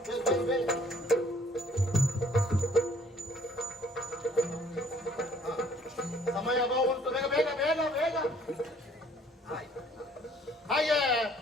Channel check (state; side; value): normal; both; correlation 0.59